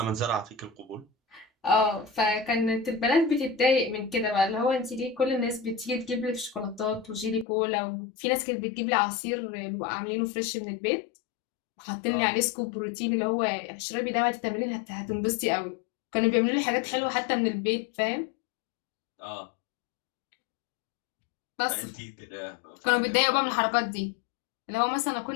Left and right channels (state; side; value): drops out; right; at 7.5 s